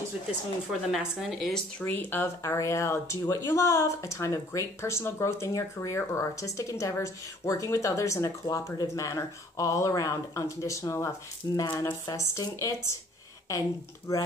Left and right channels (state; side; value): normal; both; correlation 0.57